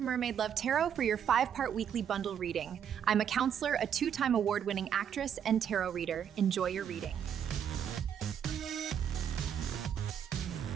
Love Tarot for your 5-part weekly bundle reading. I'm a counselor, a 2-time award-winning actress, and tarot reader. Enjoy your reading.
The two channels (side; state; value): left; quieter; 8.6 dB